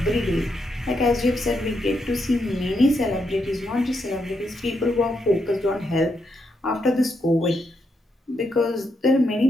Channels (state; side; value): normal; both; correlation 0.80